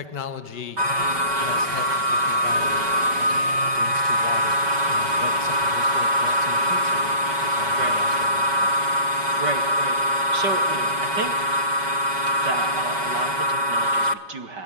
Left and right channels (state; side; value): late; left; 5.2 ms